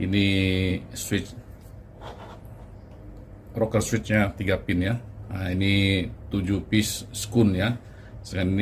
switch rocker switchnya 3 pin ya. Nah, ini 7 piece skun ya. Selain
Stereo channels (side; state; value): both; identical; correlation 1.00